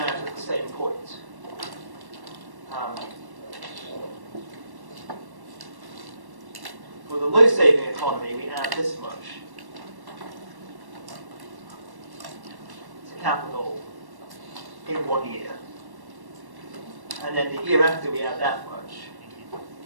out at the same point. For the low saving economy, we add this much to capital in 1 year. And then the year after, we add that much.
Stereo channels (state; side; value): late; left; 1.1 ms